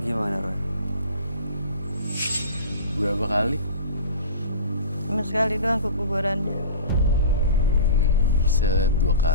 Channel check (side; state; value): both; inverted; correlation -0.35